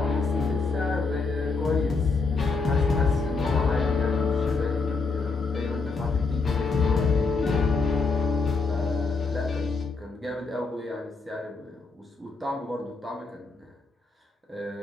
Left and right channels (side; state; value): right; quieter; 4.1 dB